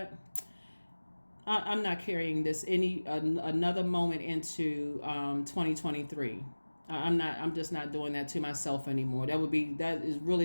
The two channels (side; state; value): both; inverted; correlation -1.00